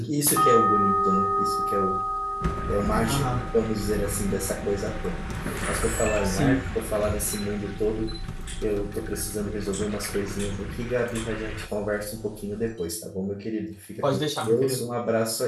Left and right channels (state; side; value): identical; both; correlation 1.00